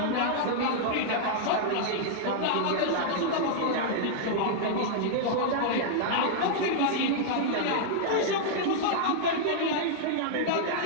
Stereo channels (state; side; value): different; both; correlation -0.01